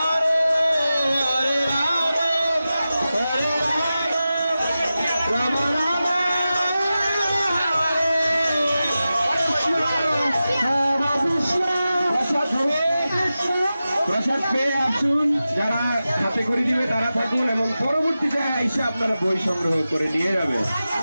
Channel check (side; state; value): both; inverted; correlation -0.94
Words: প্রসাদ পেয়ে আসুন, যারা হাতে করে দিবে তারা থাকুন এবং পরবর্তীতে এসে আপনারা বই সংগ্রহ করে নিয়ে যাবেন।